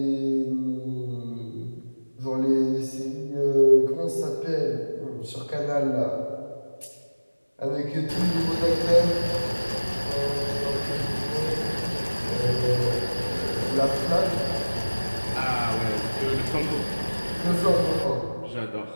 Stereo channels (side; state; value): both; inverted; correlation -1.00